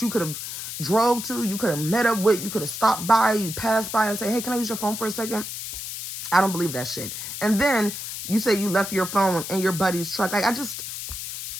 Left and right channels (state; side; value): noise; left; hiss, 7 dB below the sound